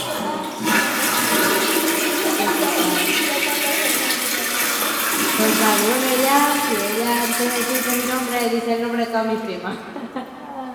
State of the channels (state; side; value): identical; both; correlation 1.00